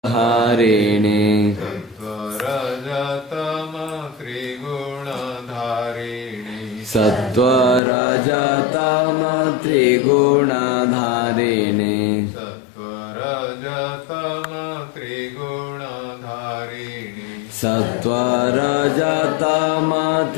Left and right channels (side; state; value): right; drops out; at 7.8 s